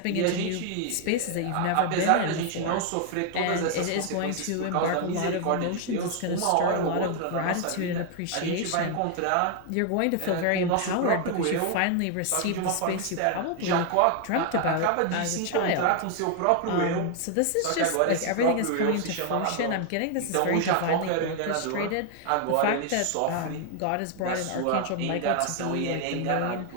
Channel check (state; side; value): different; both; correlation 0.00